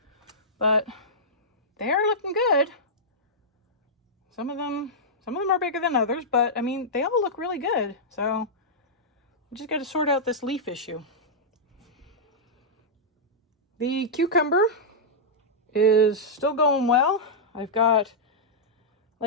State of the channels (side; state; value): both; normal; correlation -0.10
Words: But they are looking good. Some of them are bigger than others, but I mean, they all look really good. So I just got to sort out this leaf issue. The cucumber is still going well. I've got